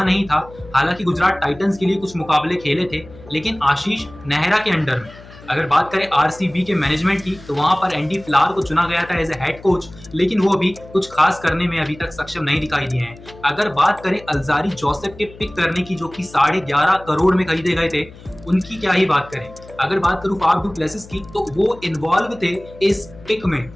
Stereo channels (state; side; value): noise; left; hum, 20 dB below the sound